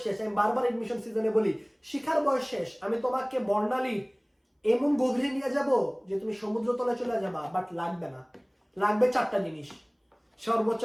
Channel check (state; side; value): identical; both; correlation 1.00